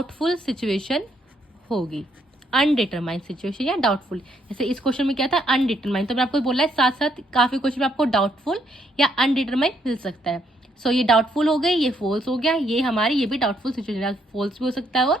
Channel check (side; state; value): both; normal; correlation 0.73